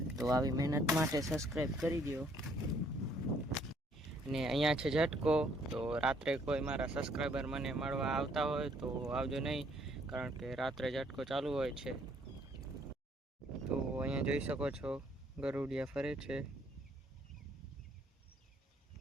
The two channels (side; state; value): both; normal; correlation 0.65